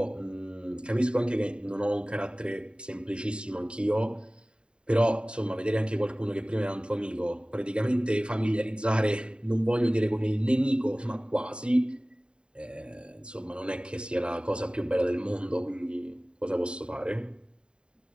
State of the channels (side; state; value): left; late; 0.051 ms